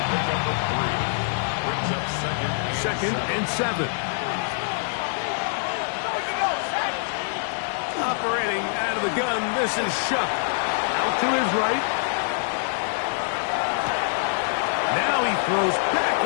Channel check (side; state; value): right; silent; digital silence